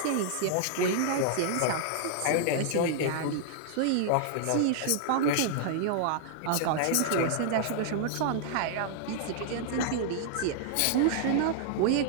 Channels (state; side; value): different; both; correlation -0.01